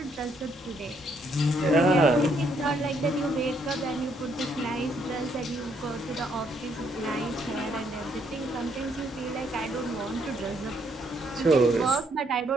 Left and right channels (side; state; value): both; normal; correlation 0.71